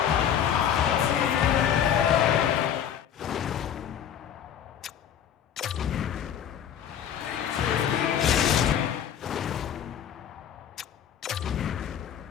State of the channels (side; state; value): right; quieter; 9.3 dB